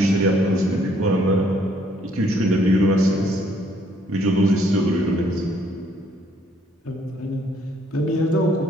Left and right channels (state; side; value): normal; both; correlation 0.66